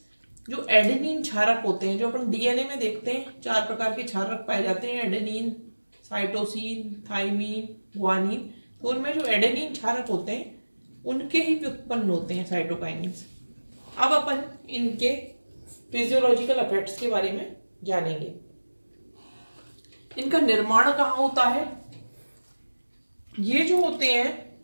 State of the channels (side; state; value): both; inverted; correlation -1.00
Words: जो एडेनिन क्षारक होते हैं, जो अपन डीएनए में देखते हैं, 4 प्रकार के क्षारक पाए जाते हैं, एडेनिन, साइटोसिन, थाइमीन, ग्वानिन। तो उनमें जो एडेनिन क्षारक होते हैं उनके ही व्युत्पन्न होते हैं साइटोकाइनिन्स। अब अपन इनके फिजियोलॉजिकल इफेक्ट्स के बारे में जानेंगे। इनका निर्माण कहाँ होता है? ये जो होते हैं